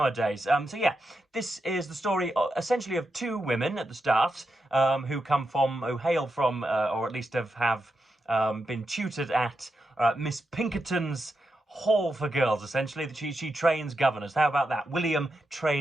So yeah, this is the story essentially of two women at the start who hail from, or at least have been tutored at Miss Pinkerton's Hall for Girls, essentially. She trains governors. How about that? William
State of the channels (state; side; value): normal; both; correlation 0.86